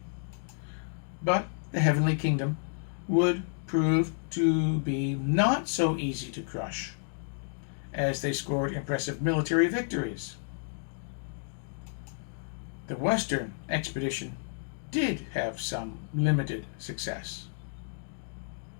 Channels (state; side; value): silent; right; digital silence